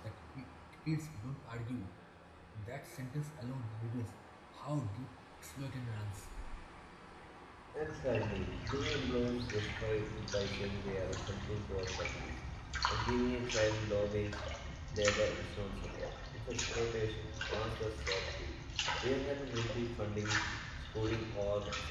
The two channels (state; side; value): identical; both; correlation 1.00